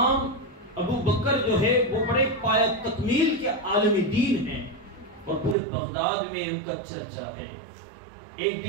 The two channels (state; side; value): drops out; left; at 5.6 s